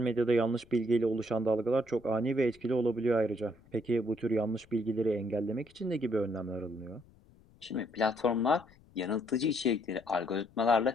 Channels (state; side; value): noise; left; rumble, 27 dB below the sound